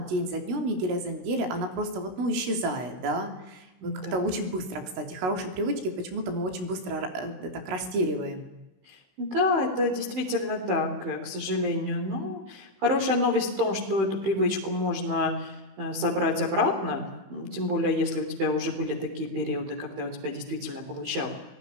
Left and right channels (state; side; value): late; left; 15 ms